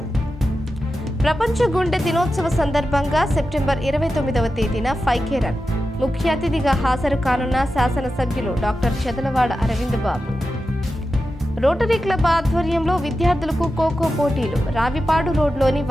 ప్రపంచ గుండె దినోత్సవ సందర్భంగా సెప్టెంబర్ 29వ తేదీన 5K రన్ ముఖ్య అతిథిగా హాజరు కానున్న శాసనసభ్యులు డాక్టర్ చెదలవాడ అరవింద్ బాబు. రోటరీ క్లబ్ ఆధ్వర్యంలో విద్యార్థులకు ఖోఖో పోటీలు. రావిపాడు రోడ్లోని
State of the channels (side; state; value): both; normal; correlation 0.91